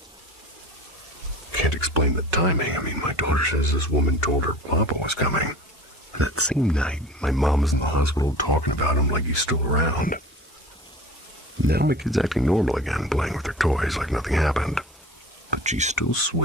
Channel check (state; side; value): normal; both; correlation 0.40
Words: Can't explain the timing. I mean, my daughter says this woman told her Papa was coming. And that same night, my mom was in the hospital talking about him like he's still around. Now my kid's acting normal again, playing with her toys like nothing happened. But she still